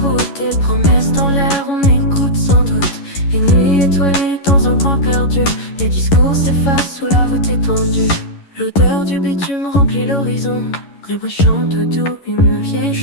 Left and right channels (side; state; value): right; late; 11 ms